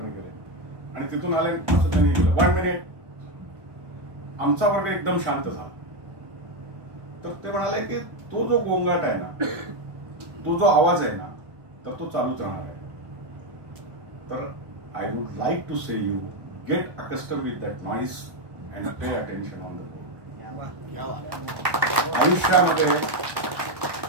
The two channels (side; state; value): left; late; 1.2 ms